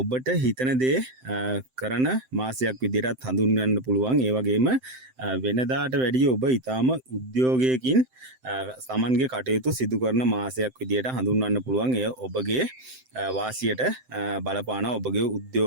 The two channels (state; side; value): late; left; 7.8 ms